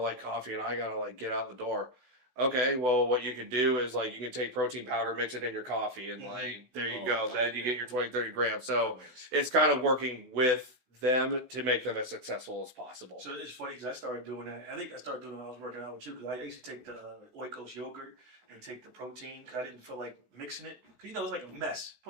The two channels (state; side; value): late; left; 16 ms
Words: coffee and I gotta like get out the door. Okay, well what you could do is like you can take protein powder, mix it in your coffee, and like there you go. Then you get your 20, 30 grams. So it's kind of working with them to make them as successful as possible. So it's funny because I started doing that. I think I started doing it when I was working out with you because I used to take the Oikos yogurt and take the protein because I didn't feel like mixing it. Because, it was like a mess.